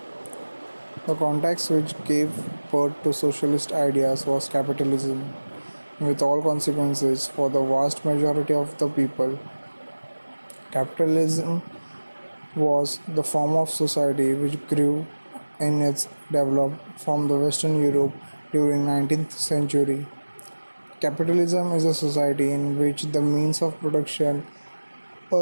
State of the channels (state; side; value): inverted; both; correlation -1.00